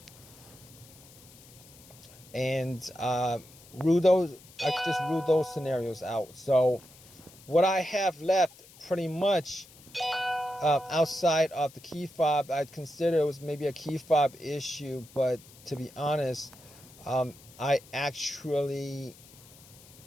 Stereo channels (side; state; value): left; noise; hiss, 22 dB below the sound